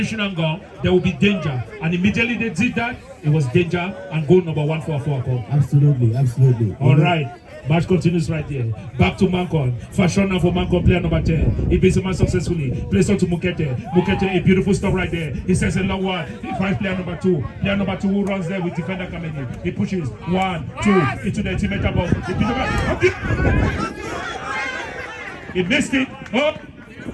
gun, there will be danger. And immediately they did that, it was danger and goal number 1 for AFOAKOM. Absolutely. All right. Match continues right there. Back to MANKON. Fashion now for MANKON, player number 10. He beats the man successfully. Plays on to Mukete. Mukete, a beautiful stop right there. He sends a long one. He finds player number 2. Player number 2 who runs there with defender coming in. He pushes 1, 2 into the teammate box. He missed it. Up.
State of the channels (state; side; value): identical; both; correlation 1.00